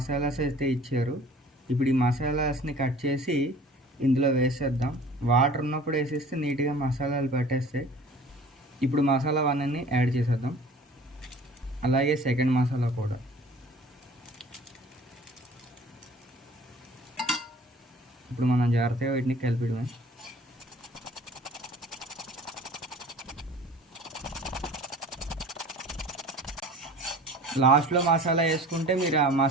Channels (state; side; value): normal; both; correlation 0.46